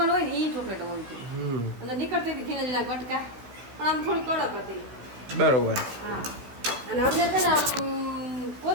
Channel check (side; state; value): left; late; 16 ms